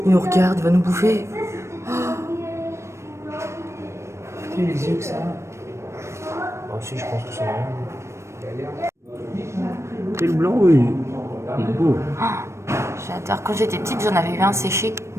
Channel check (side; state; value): left; late; 0.13 ms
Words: Il nous regarde, il va nous bouffer. Putain, les yeux que ça a. Ah, si, je pense que c'est vrai. Et le blanc, oui. Il est beau. J'adore. Quand j'étais petite, j'en avais vu un séché.